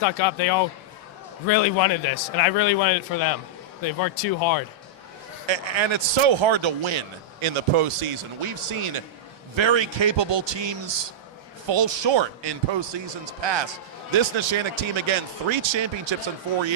up. They all really wanted this, and I really wanted it for them. They've worked too hard. And it's so hard to win in the postseason. We've seen very capable teams fall short in postseasons past. This Neshannock team, again, 3 championships in 4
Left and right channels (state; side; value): normal; both; correlation -0.09